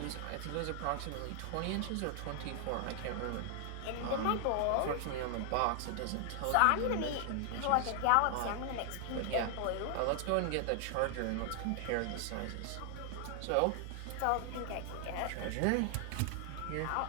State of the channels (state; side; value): different; both; correlation 0.00